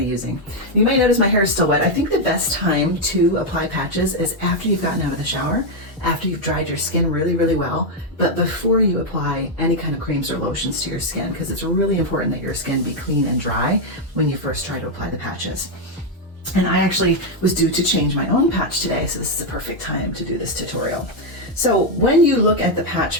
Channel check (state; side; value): normal; both; correlation 0.02